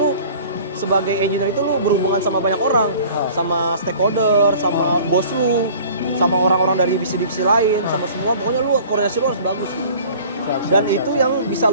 sebagai engineer itu lu berhubungan sama banyak orang, sama stakeholder, sama bos lu, sama orang-orang dari divisi-divisi lain, sama semua. Pokoknya lu koordinasi lu harus bagus. Dan itu yang bisa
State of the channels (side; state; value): both; inverted; correlation -0.47